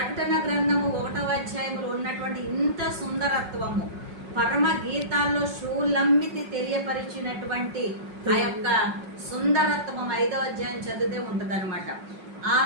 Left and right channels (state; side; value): late; left; 5.4 ms